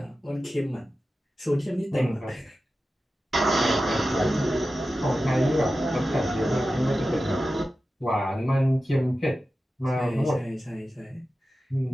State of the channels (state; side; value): normal; both; correlation 0.93